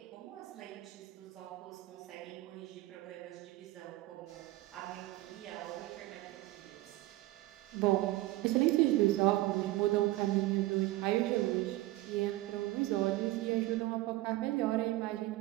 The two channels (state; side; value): quieter; left; 17.8 dB